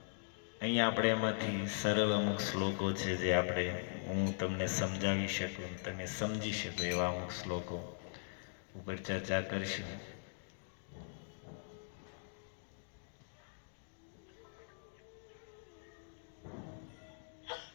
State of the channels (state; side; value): silent; right; digital silence